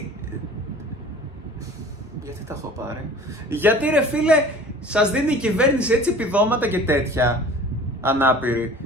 τα έχω πάρει? Γιατί ρε φίλε σας δίνει η κυβέρνηση έτσι επιδόματα και τέτοια ανάπηροι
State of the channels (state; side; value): normal; both; correlation 0.44